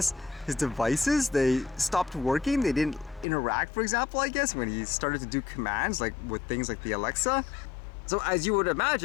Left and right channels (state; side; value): drops out; right; at 3.2 s